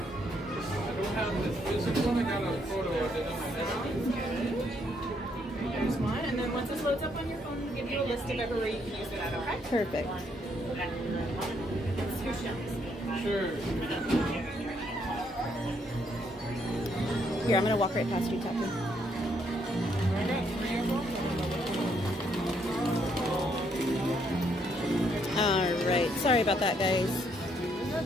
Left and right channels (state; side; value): normal; both; correlation 0.72